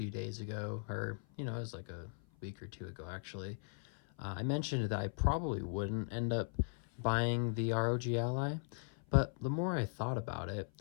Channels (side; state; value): right; silent; 52 dB below the other